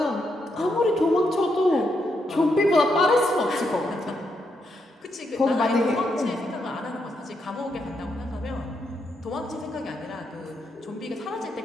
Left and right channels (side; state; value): both; normal; correlation 0.80